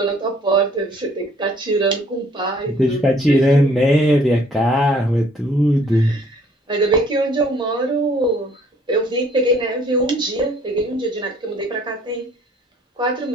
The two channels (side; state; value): both; normal; correlation 0.59